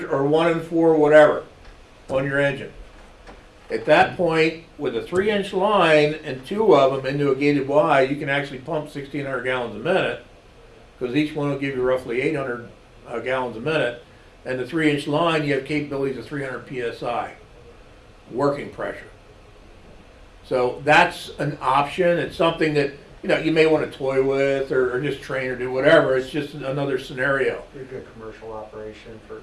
or 1 and 4, whatever, on your engine. At that point, with a 3-inch line and 2 of them into a gated Y, you can actually pump 1,600 gallons a minute, because each one will give you roughly 800 gallons a minute. And the 3-inch line, you have capabilities of 300 psi working pressure. So that's an option. It's something that, you may want to toy with or just train or do whatever. It's just another scenario. Be a good commercial operation for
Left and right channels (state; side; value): identical; both; correlation 1.00